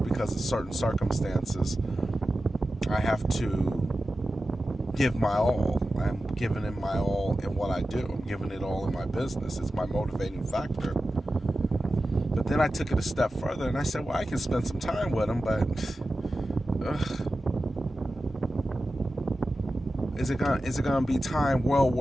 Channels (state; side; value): normal; both; correlation 0.93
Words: of certain circumstances I have to give my all. I'm giving it my all in what I do. I'm giving it all in my business. It's my motivating factor. But then I took it a step further, and I said, well, I can spend some time with them, but is it gonna be time well